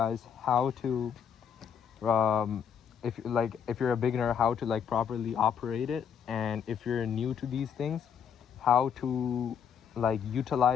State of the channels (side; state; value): right; quieter; 7.7 dB